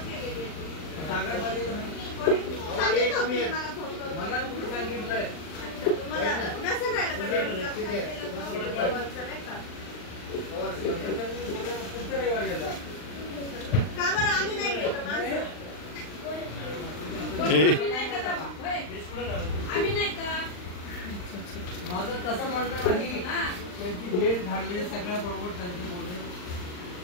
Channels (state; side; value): late; right; 39 ms